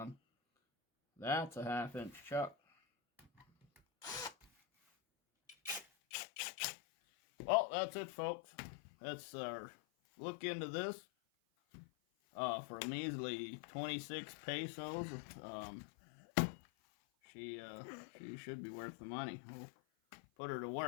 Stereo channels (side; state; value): right; drops out; at 5.9 s